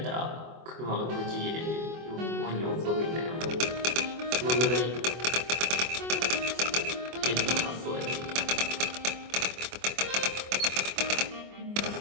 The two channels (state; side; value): late; left; 24 ms